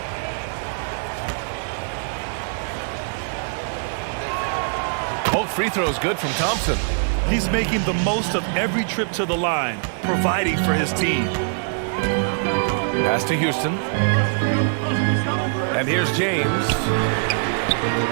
Both free throws good from Thompson. He's making the most of every trip to the line, providing for his team. Pass to Houston. And here's James. And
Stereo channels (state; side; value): silent; left; 62 dB below the other